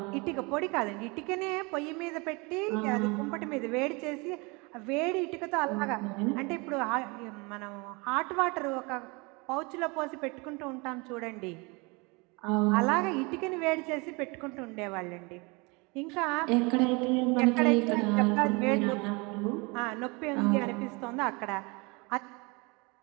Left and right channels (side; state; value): left; quieter; 28.1 dB